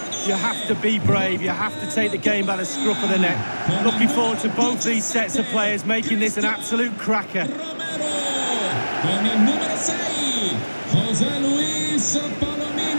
you have to be brave. You have to take the game by the scruff of the neck. Looking forward to both these sets of players making this an absolute cracker. Con il numero 6, José Luis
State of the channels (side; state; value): both; inverted; correlation -1.00